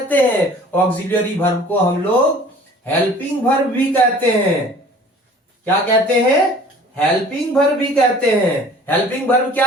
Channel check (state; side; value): normal; both; correlation 0.48